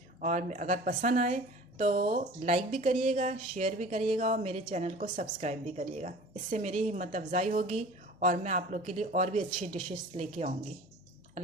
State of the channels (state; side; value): normal; both; correlation 0.43